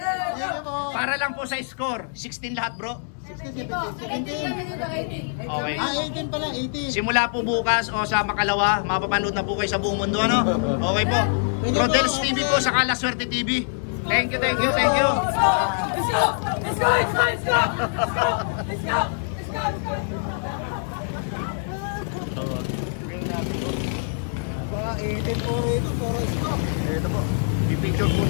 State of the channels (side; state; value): right; silent; digital silence